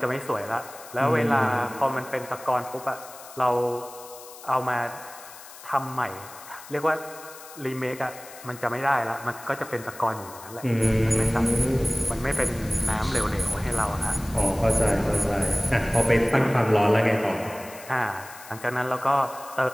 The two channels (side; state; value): left; noise; hiss, 17 dB below the sound